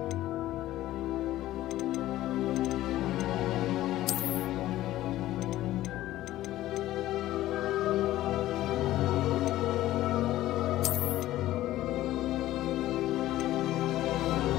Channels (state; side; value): quieter; right; 15.0 dB